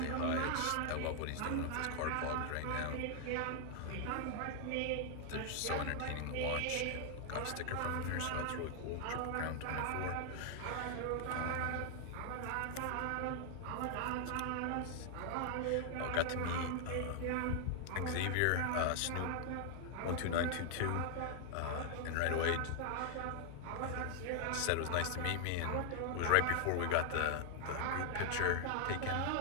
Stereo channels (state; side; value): different; both; correlation 0.00